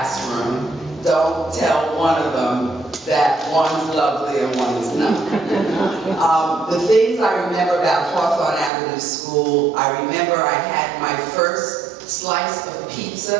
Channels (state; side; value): drops out; left; at 8.7 s